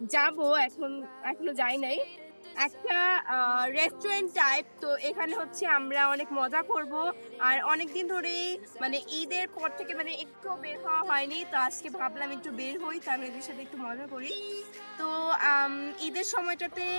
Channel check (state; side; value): inverted; both; correlation -1.00